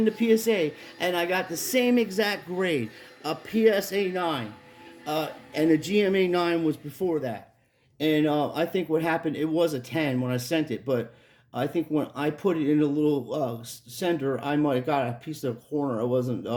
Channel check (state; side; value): identical; both; correlation 1.00